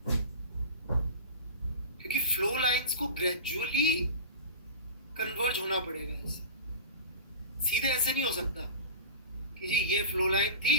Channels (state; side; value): inverted; both; correlation -0.32